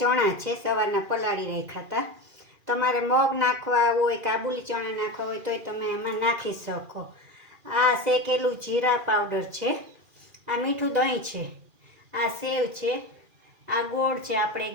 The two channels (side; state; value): left; late; 2.4 ms